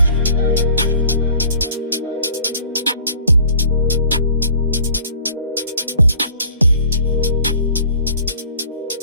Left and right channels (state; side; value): inverted; both; correlation -0.52